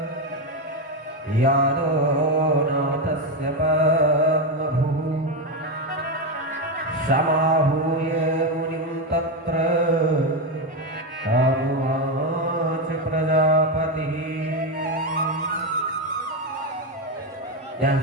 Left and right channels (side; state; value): both; normal; correlation 0.10